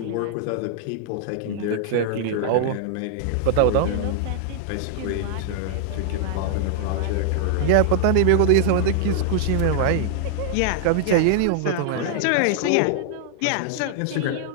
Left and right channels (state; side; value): different; both; correlation -0.01